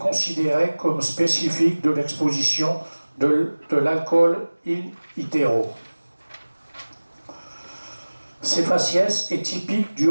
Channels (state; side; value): inverted; both; correlation -1.00